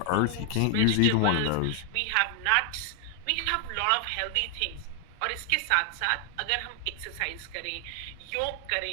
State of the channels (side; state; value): both; different; correlation 0.00